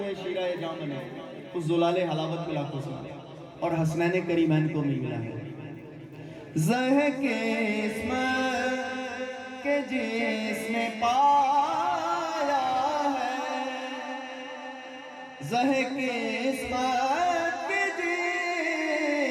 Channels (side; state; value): both; identical; correlation 1.00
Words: شیرہ جام بنے، اس زلال حلاوت ملا کو سنا، اور حسنین کریمین کو بھی ملا ہے. زہ کے اسم کے جس نے پایا ہے، زہ کے اسمت کے